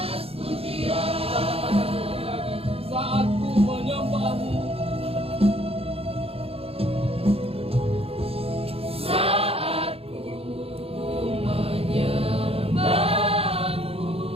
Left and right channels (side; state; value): left; late; 0.28 ms